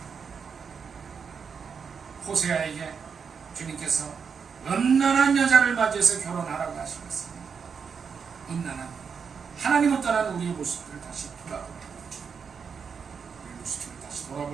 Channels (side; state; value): left; quieter; 6.2 dB